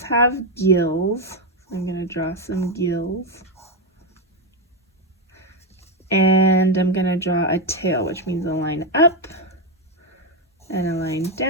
have gills, so I'm gonna draw some gills. And I'm gonna draw a tail, which means a line up and a line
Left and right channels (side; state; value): both; normal; correlation 0.06